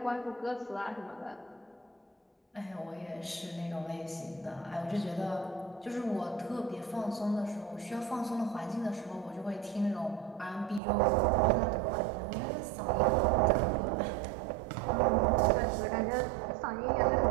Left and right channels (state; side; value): drops out; left; at 10.8 s